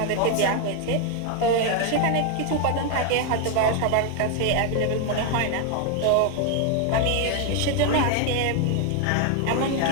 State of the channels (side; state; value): both; different; correlation 0.00